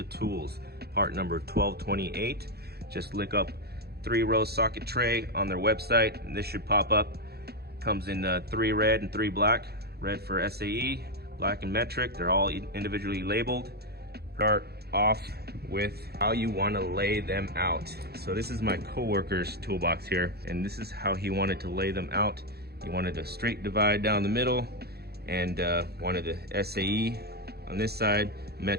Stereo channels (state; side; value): late; left; 0.46 ms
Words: Tools, part number 1228. Just look up 3-row socket tray on their website and this should pop up. Comes in 3 red and 3 black. Red for SAE, black and metric. They're all individually labeled. Start off with how you want to lay them out. So this is my coworker's toolbox here, and this is how he wanted to lay them out. He wanted a straight divide down the middle, and wanted the SAE on this side,